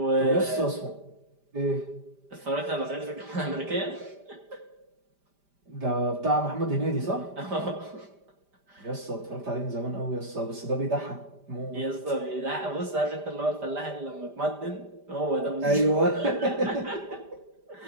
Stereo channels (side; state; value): left; late; 5.0 ms